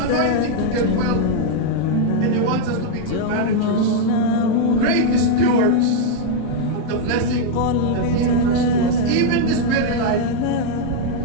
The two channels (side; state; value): both; different; correlation 0.00